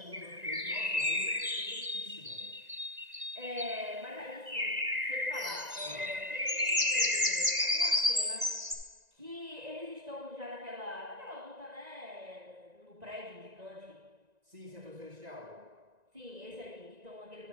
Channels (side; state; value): left; late; 1.9 ms